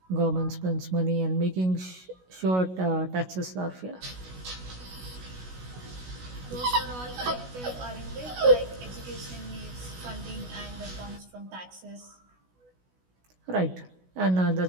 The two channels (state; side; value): late; left; 16 ms